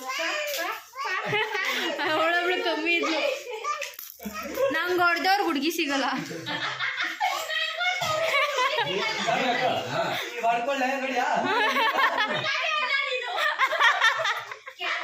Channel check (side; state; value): both; identical; correlation 1.00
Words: ಅವಳೊಬ್ಳು ಕಮ್ಮಿ ಇದ್ಲು. ನಂಗೆ ಹೊಡೆದವ್ರು ಹುಡುಗಿ ಸಿಗಲ್ಲ.